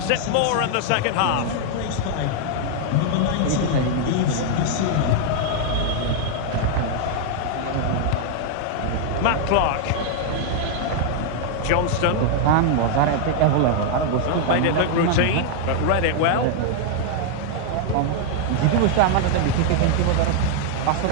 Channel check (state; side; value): different; both; correlation 0.00